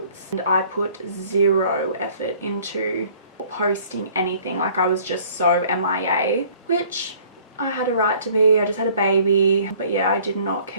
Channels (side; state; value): both; inverted; correlation -0.55